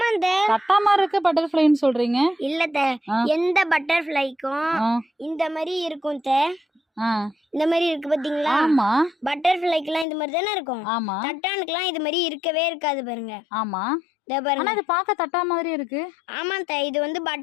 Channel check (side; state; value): right; drops out; at 10.1 s